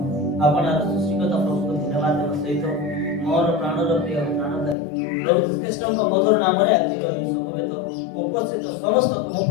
आपण सृष्टिकर्ता प्रभु को धन्यवाद देव सहित मोर प्राणर प्रिय प्राणदायी प्रभु श्रीकृष्ण मधुर नाम आज समवेत उपस्थित समस्त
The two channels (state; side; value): drops out; right; at 4.8 s